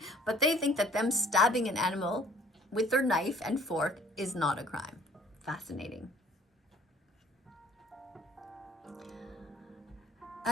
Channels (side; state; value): both; normal; correlation 0.55